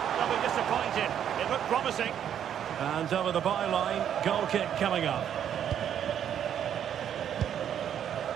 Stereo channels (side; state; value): left; quieter; 9.5 dB